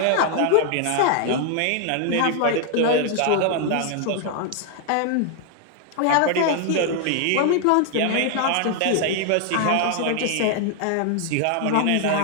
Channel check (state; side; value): different; both; correlation 0.00